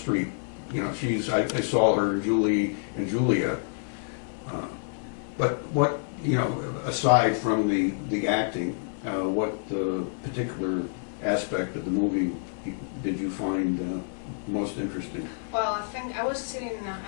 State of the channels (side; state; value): right; silent; 58 dB below the other